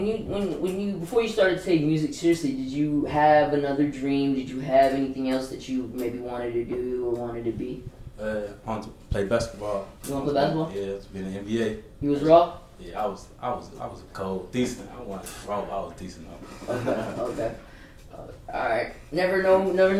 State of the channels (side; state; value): both; identical; correlation 1.00